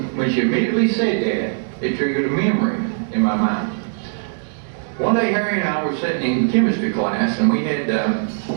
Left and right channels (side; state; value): left; silent; digital silence